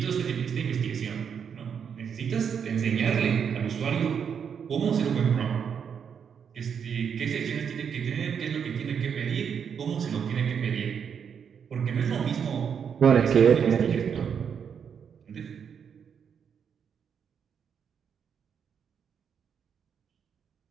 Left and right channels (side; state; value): left; quieter; 7.3 dB